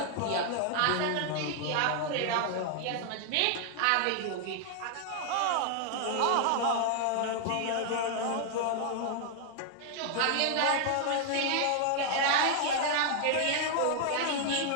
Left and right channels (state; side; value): different; both; correlation 0.00